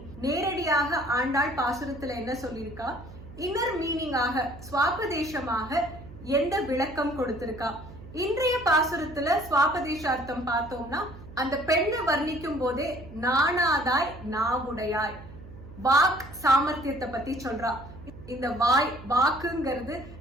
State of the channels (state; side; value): noise; right; hum, 16 dB below the sound